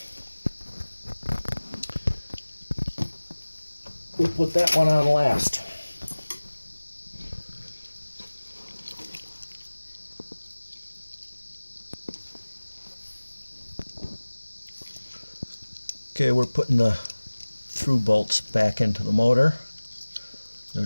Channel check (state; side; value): inverted; both; correlation -1.00